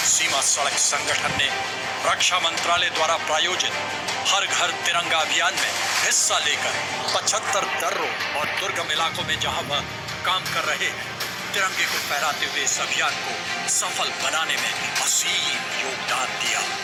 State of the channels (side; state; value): both; identical; correlation 1.00